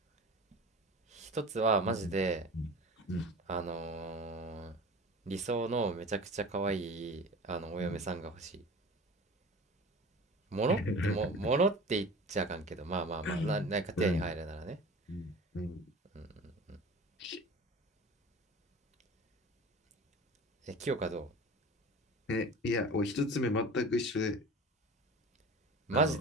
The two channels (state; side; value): normal; both; correlation 0.38